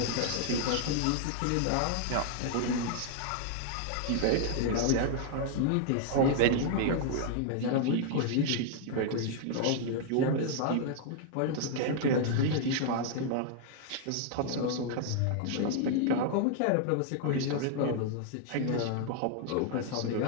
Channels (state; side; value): different; both; correlation 0.00